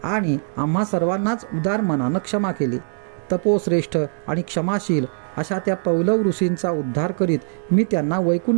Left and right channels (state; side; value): silent; left; digital silence